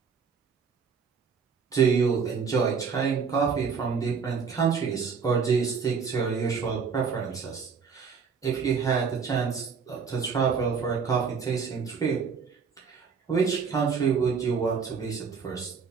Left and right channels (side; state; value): left; quieter; 5.9 dB